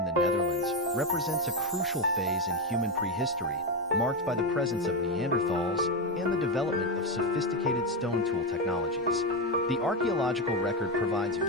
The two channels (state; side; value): normal; both; correlation 0.10